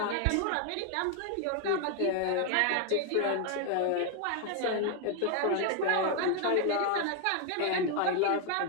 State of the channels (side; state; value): both; different; correlation 0.01